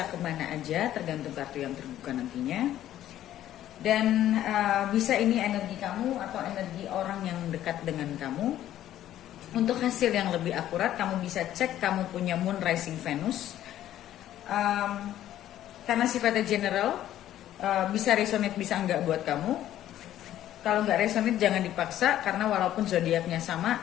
kemana aja, tergantung kartu yang terbuka nantinya. Dan bisa ini energi kamu atau energi orang yang dekat dengan kamu. Untuk hasil yang lebih akurat, kamu bisa cek kamu punya Moon, Rising, Venus. Karena sifatnya general, bisa resonate bisa enggak buat kamu. Kalau nggak resonate jangan dipaksa, karena walaupun zodiaknya sama,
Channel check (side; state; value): right; quieter; 12.4 dB